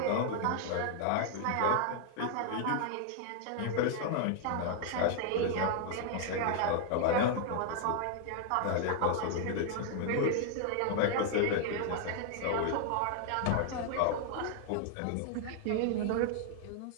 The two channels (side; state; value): both; different; correlation 0.00